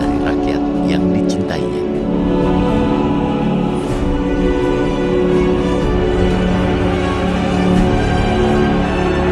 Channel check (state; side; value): identical; both; correlation 1.00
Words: rakyat yang dicintainya.